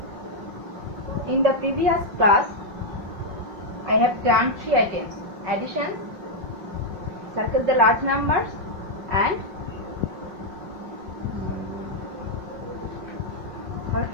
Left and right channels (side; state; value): left; late; 5.3 ms